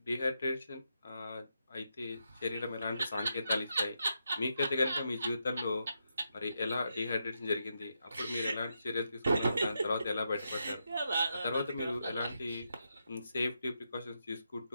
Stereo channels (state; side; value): inverted; both; correlation -0.84